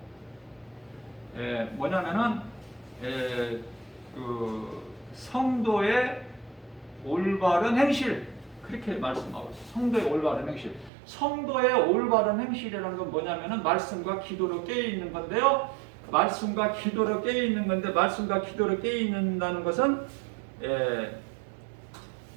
뭐냐면은 그 성도의 올바른 행실, 그렇게 말씀하고 있어요. 성도의 올바른 행실. 성도의 올바른 행실이라는 건 뭐냐면은 말씀과 기도로 깨어 있는 건데요. 말씀과 기도로 깨어 있는 건데 말씀과 기도로 깨어 있는다는 것은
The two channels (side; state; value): left; drops out; at 10.9 s